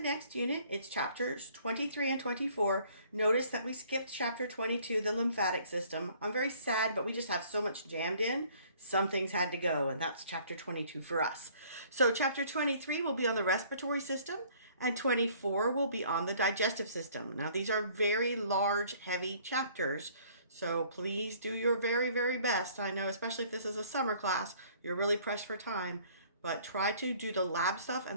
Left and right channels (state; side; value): inverted; both; correlation -0.57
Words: unit. It's chapters 23 and 24. Notice that we skipped chapter 22, the lymphatic system. I'm very sad, but we just have so much jammed in. Some things had to go, and that's chapter 22 for us. So chapter 23 will be on the respiratory system, and 24 will be on the digestive system. Now these are very large, heavy chapters, so please do your very, very best. I know, especially if this is a summer class, you're really pressed for time. But try to do the lab stuff